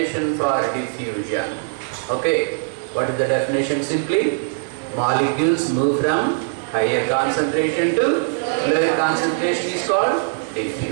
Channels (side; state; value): left; silent; digital silence